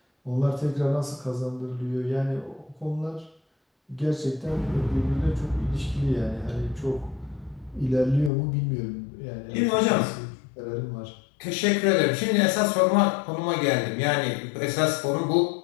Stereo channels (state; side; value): drops out; right; at 8.3 s